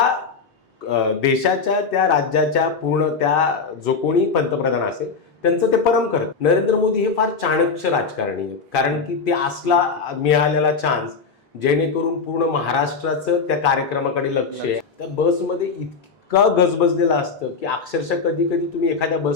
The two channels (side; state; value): right; quieter; 5.0 dB